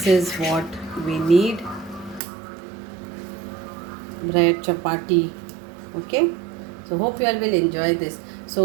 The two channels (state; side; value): drops out; left; at 2.2 s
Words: is what we need: bread, chapati. Okay, so hope you all will enjoy this.